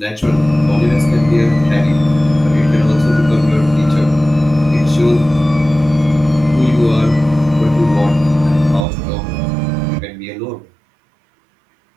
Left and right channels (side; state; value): left; drops out; at 8.8 s